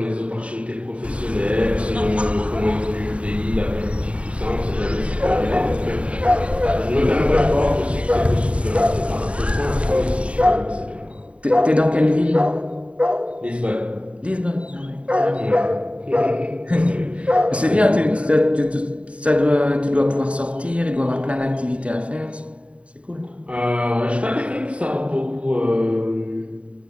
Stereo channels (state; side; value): late; left; 0.062 ms